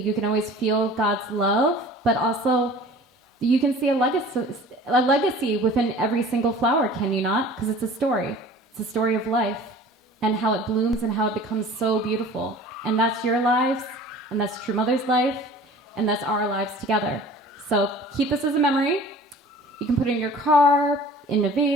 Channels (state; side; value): normal; both; correlation 0.44